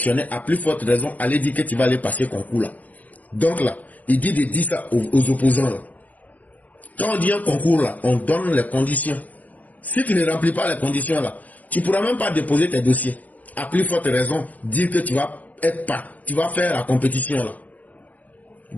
À plus forte raison, aller dire que tu vas aller passer concours, là. Donc, là, il dit de dire ça aux opposants, là. Quand on dit un concours, là, on donne les conditions. Si tu ne remplis pas les conditions, là, tu ne pourras même pas déposer tes dossiers. À plus forte raison, dire que tu vas faire la compétition là.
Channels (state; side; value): late; right; 0.077 ms